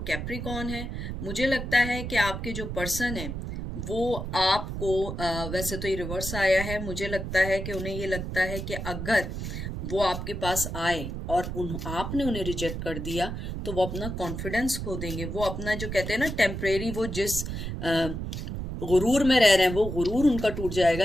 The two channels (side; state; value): right; noise; rumble, 5 dB below the sound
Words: कैप्रिकॉन है। मुझे लगता है कि आपके जो पर्सन है वो आपको वैसे तो ये रिवर्स आया है, मुझे लगता है कि उन्हें ये लगता है कि अगर वो आपके पास आए और आपने उन्हें रिजेक्ट कर दिया तो वो अपना कॉन्फिडेंस खो देंगे। वो अपना जो कहते हैं ना टेम्परेरी, वो जिस गुरूर में रह रहे हैं वो गुरूर उनका टूट जाएगा